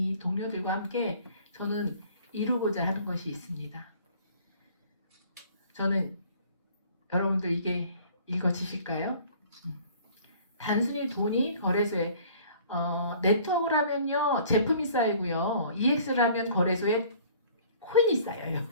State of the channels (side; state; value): both; inverted; correlation -0.52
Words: 동료들과 함께 저는 이루고자 하는 것이 있습니다. 저는 여러분들 이게 읽어지실까요? 단순히 돈이 거래소에 네트워크를 하면요 제품이 쌓이고요. EX를 하면 거래소에 코인이 쌓여요.